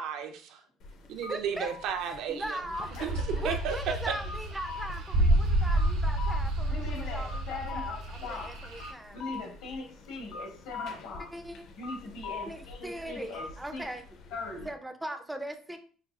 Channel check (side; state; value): both; normal; correlation 0.52